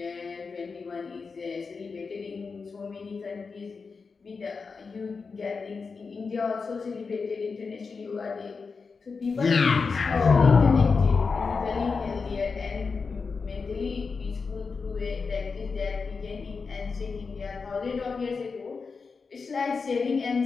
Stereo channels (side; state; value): right; quieter; 4.9 dB